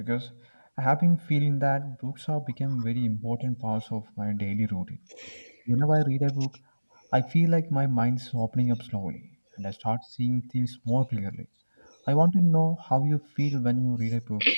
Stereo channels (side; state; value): both; inverted; correlation -1.00